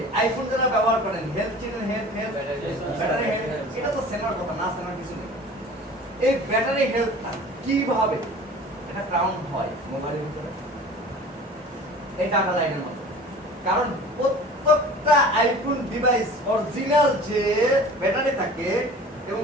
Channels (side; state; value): both; normal; correlation 0.42